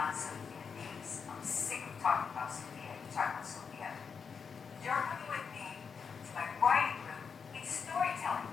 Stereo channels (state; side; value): quieter; right; 6.0 dB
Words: some human beings. I'm sick of talking about Sophia. You talk about Sophia. You're coming with me to my writing group. It's storytelling